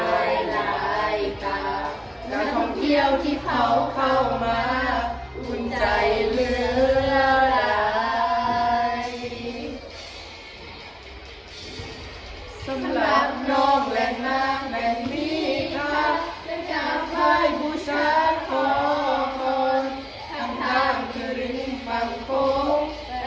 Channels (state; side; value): identical; both; correlation 1.00